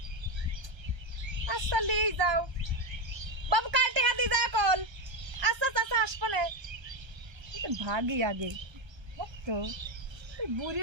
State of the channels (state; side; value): late; left; 1.3 ms